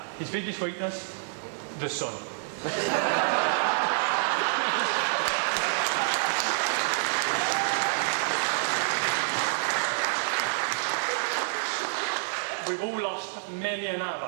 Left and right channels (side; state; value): left; silent; digital silence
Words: his biggest weakness, the sun. we've all lost many an